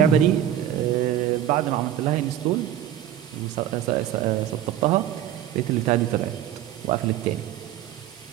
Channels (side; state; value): left; quieter; 11.1 dB